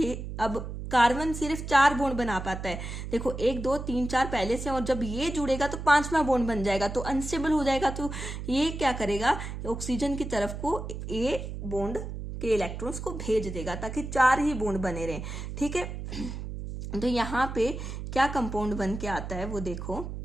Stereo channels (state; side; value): noise; right; hum, 7 dB below the sound